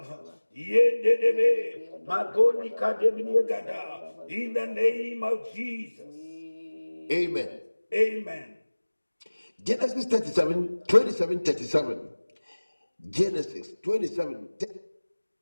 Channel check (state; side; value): inverted; both; correlation -1.00